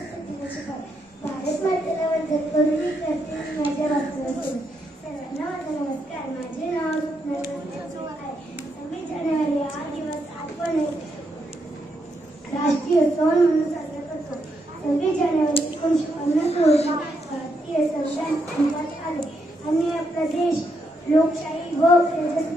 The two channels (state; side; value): normal; both; correlation 0.80